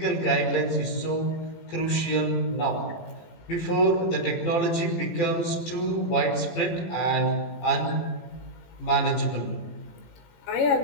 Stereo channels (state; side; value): late; right; 18 ms